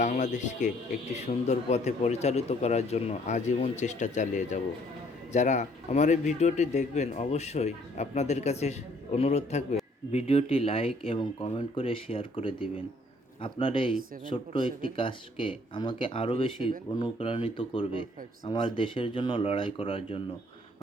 বাংলাদেশকে একটি সুন্দর পথে পরিচালিত করার জন্য আজীবন চেষ্টা চালিয়ে যাব। যারা আমার এই ভিডিওটি দেখবেন, অবশ্যই আপনাদের কাছে অনুরোধ থাকবে ভিডিওটি লাইক এবং কমেন্ট করে শেয়ার করে দিবেন। আপনার এই ছোট্ট একটি কাজকে আমাকে আরও বেশি অনুপ্রাণিত করবে আমার দেশের জন্য লড়াই করার জন্য।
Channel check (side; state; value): both; normal; correlation 0.62